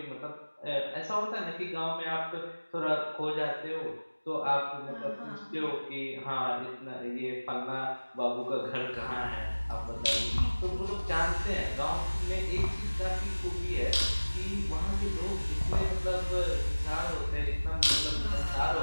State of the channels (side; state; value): both; inverted; correlation -1.00